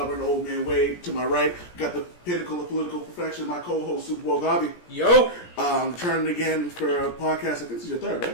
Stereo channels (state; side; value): late; right; 17 ms